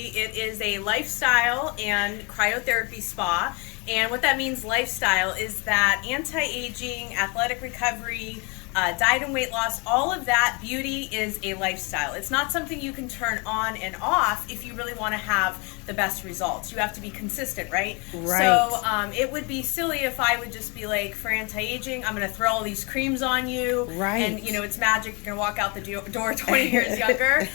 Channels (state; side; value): quieter; right; 30.7 dB